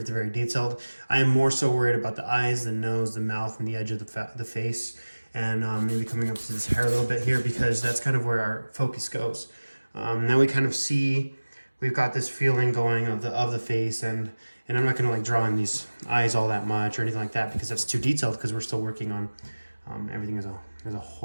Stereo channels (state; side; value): inverted; both; correlation -1.00